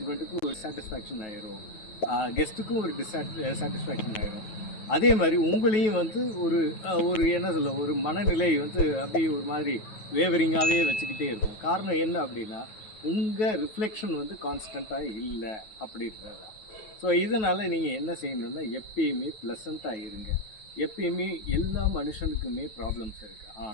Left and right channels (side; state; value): right; late; 9.3 ms